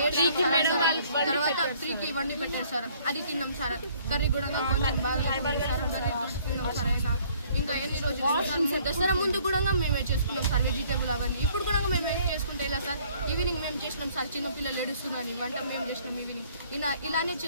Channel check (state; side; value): inverted; both; correlation -0.59